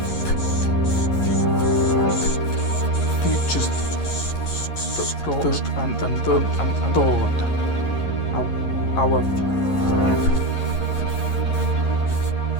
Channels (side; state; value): right; late; 11 ms